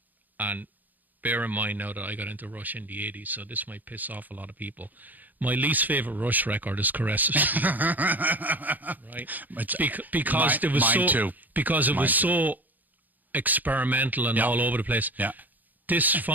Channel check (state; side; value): late; left; 0.083 ms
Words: and bear in mind now that I got into Rush in the 80s, so this might piss off a lot of people. My least favorite Rush record is Caress of Steel. Right? Because it was so experimental and all over the place. Yeah. This